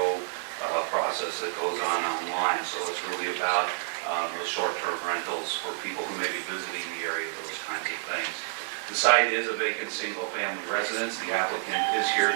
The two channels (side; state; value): left; silent; digital silence